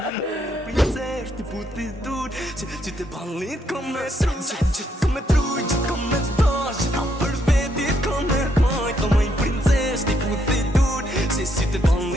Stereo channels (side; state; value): both; normal; correlation 0.74